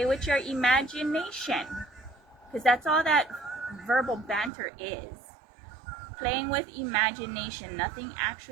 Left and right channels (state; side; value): drops out; left; at 4.5 s